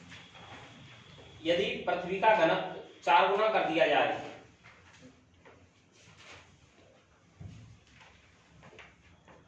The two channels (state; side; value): identical; both; correlation 1.00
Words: यदि पृथ्वी का घनत्व 4 गुना कर दिया जाए